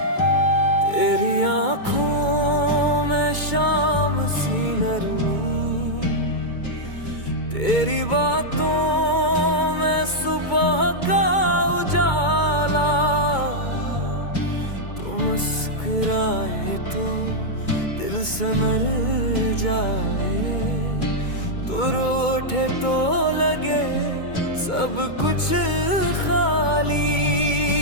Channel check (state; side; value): late; right; 2.2 ms